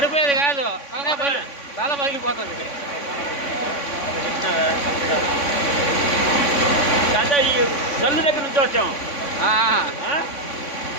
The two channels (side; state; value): right; late; 3.5 ms